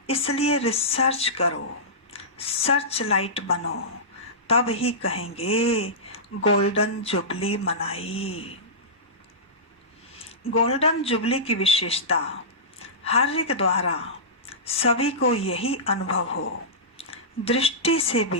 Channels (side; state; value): both; normal; correlation -0.17